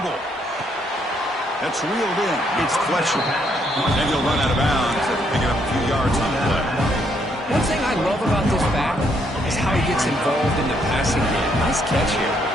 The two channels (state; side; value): normal; both; correlation 0.72